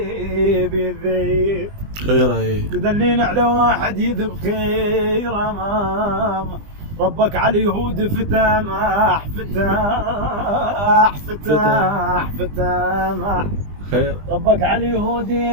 خيره تدلين على واحد يذب خيرا ما ربك على اليهود فتامح خير ربك على اليهود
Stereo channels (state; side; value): late; left; 20 ms